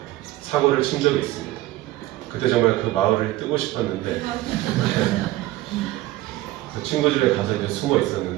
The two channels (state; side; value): quieter; left; 16.9 dB